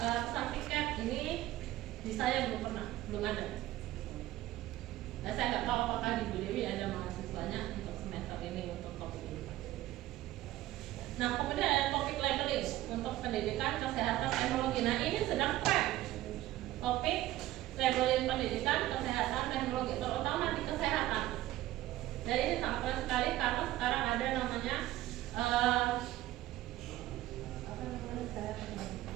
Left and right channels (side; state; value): left; quieter; 15.6 dB